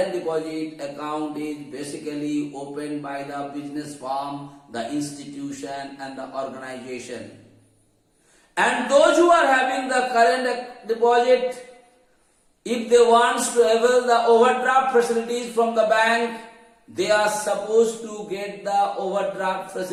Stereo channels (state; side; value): identical; both; correlation 1.00